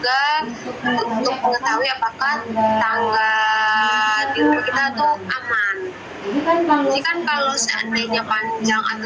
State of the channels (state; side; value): identical; both; correlation 1.00